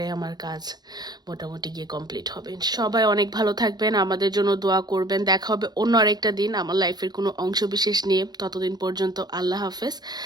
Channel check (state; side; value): late; left; 0.20 ms